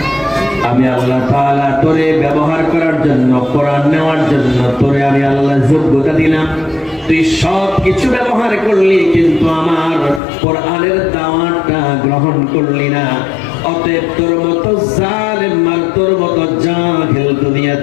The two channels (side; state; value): right; drops out; at 10.2 s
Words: আমি আল্লাহ তাআলা তোরে ব্যবহার করার জন্য, কোরআন নেওয়ার জন্য তোরে আমি আল্লাহ যোগ্যতা দিলাম, তুই সব কিছু ব্যবহার করলি, কিন্তু আমার কোরআনের দাওয়াতটা গ্রহণ করলি না। অতএব তোর মতো জালেম আর তোর মতো জাহিল দুনিয়া